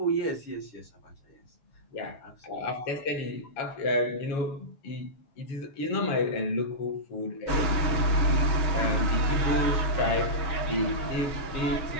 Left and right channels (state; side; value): late; right; 6.9 ms